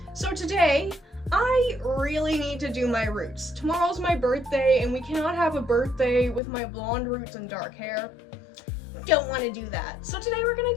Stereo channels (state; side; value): drops out; right; at 6.4 s